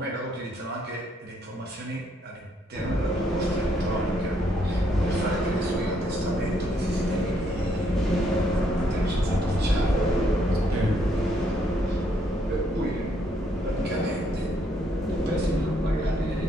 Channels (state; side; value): normal; both; correlation 0.71